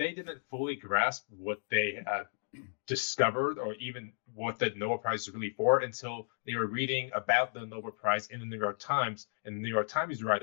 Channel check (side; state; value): right; silent; digital silence